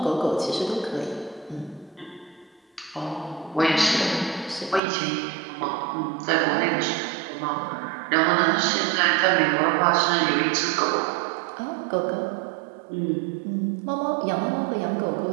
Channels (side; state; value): left; drops out; at 4.8 s